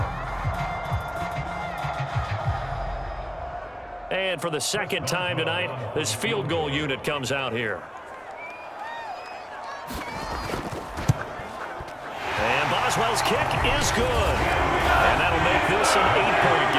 And for the 2nd time tonight, this field goal unit comes out here. And Boswell's kick is good. And that'll make this an 8-point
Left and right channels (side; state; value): both; identical; correlation 1.00